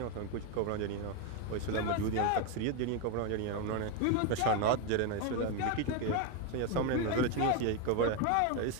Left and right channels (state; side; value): different; both; correlation 0.02